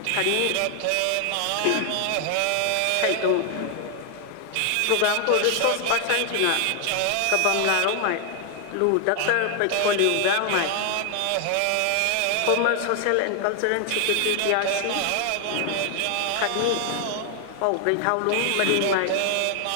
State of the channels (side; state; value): both; different; correlation 0.00